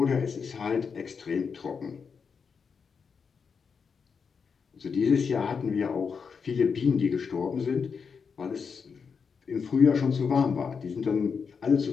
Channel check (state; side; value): quieter; right; 5.9 dB